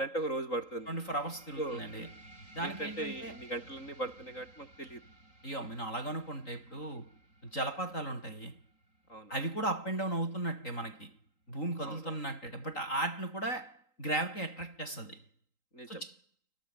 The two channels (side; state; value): right; late; 3.8 ms